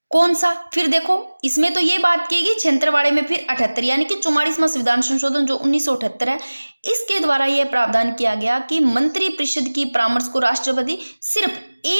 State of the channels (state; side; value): inverted; both; correlation -1.00